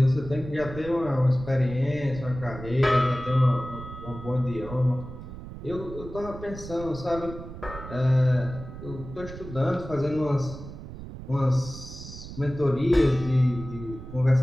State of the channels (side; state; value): right; noise; rumble, 12 dB below the sound